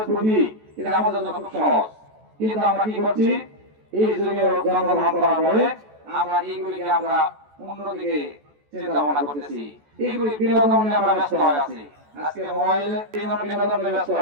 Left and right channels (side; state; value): left; late; 14 ms